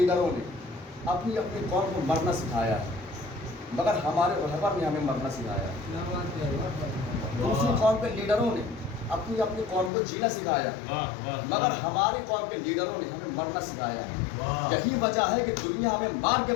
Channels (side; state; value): right; drops out; at 9.9 s